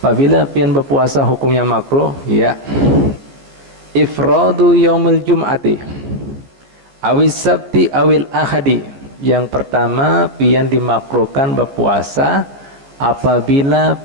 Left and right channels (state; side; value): late; left; 15 ms